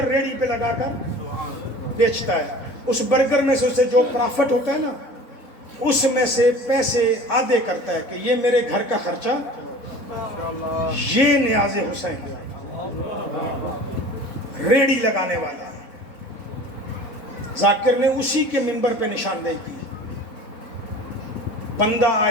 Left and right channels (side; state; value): right; late; 4.0 ms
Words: ریڑھی پہ لگا کر بیچتا ہے، اس برگر میں سے اسے جو پرافٹ ہوتا ہے نا، اس میں سے پیسے آدھے کرتا ہے کہ یہ میرے گھر کا خرچہ، یہ نیاز حسین ریڑھی لگانے والا ہے۔ ذاکر نے اسی کے منبر پہ نشاندہی کی۔ بندہ